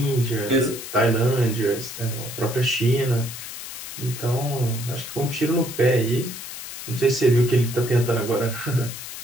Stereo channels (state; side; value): noise; left; hiss, 10 dB below the sound